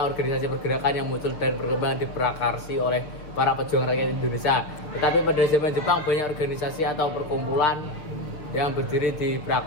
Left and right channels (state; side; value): late; right; 6.2 ms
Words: organisasi pergerakan yang muncul dan berkembang diprakarsi oleh para pejuang rakyat Indonesia. Tetapi pada zaman Jepang, banyak organisasi atau perkumpulan yang berdiri